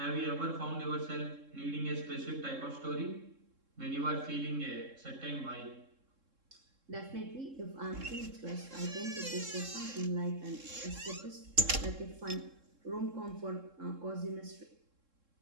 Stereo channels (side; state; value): left; late; 3.7 ms